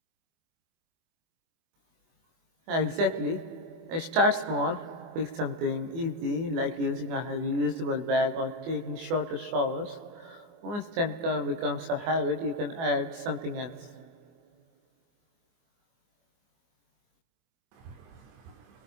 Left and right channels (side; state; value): left; late; 24 ms